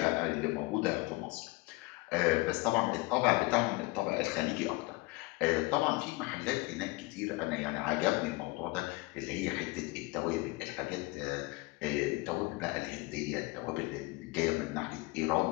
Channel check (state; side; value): quieter; right; 23.8 dB